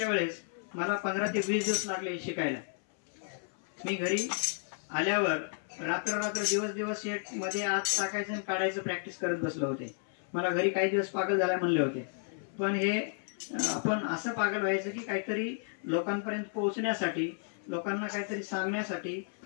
वेळेस मला 15 ते 20 दिवस लागले शिकायला. मी घरी आल्यावर रात्र दिवस शेट मध्ये आत टाकायचं आणि काढायचं प्रॅक्टिस करत बसलो होते. मला घरी काही दिवस पागल झाला म्हणले होते. पण हे आपण असं पागल व्हायचं की काहीतरी लोकांपर्यंत पोहोचण्यासाठी, लोकांना काहीतरी सांगण्यासाठी,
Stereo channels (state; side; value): silent; right; 56 dB below the other